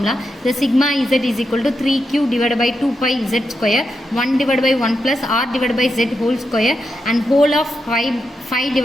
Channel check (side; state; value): both; normal; correlation 0.85